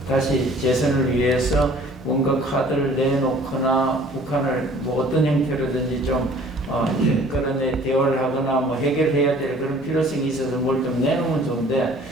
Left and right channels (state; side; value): normal; both; correlation 0.52